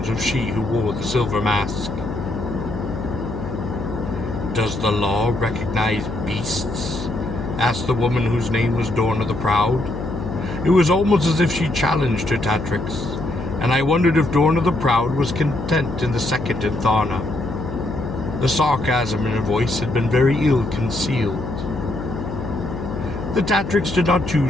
of she who wore the silver mask. Does the law recognize beasts? Asked the woman whose name was Dorna the Proud. It was almost as if she challenged her Tatrix, and I wondered if Dorna the Proud was content in the second in Tharna. The sarcasm in her voice had been very ill concealed. The Tatrix did not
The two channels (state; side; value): noise; left; hum, 7 dB below the sound